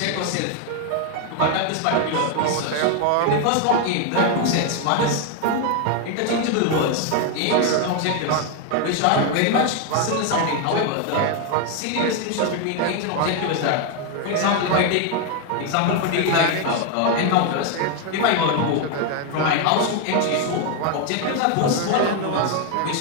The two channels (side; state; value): both; different; correlation 0.01